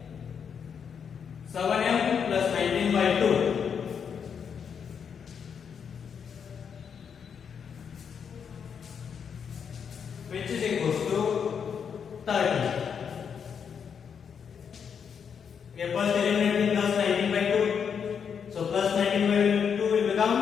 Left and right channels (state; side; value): quieter; right; 7.0 dB